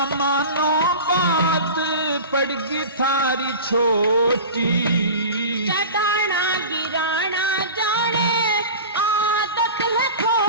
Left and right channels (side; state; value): both; inverted; correlation -0.33